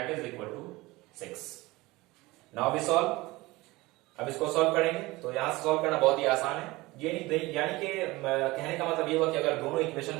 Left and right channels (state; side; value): quieter; left; 21.0 dB